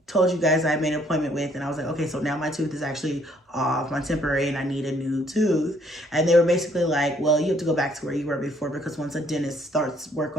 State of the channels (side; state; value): both; normal; correlation 0.65